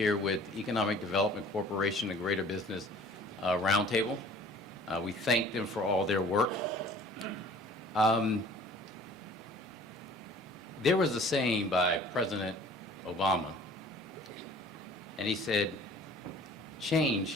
with Economic Development Corporation and Greater Business Roundtable. We thank them for all their work. There was a saying by President Obama, and he said,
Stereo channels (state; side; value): normal; both; correlation 0.49